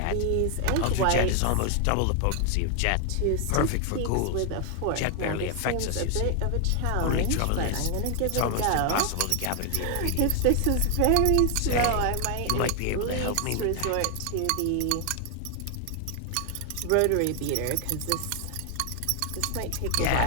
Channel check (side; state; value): both; different; correlation 0.00